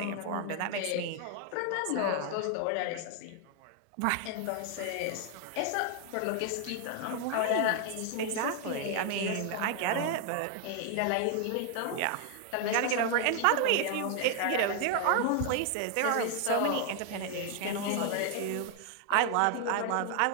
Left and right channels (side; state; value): both; different; correlation 0.00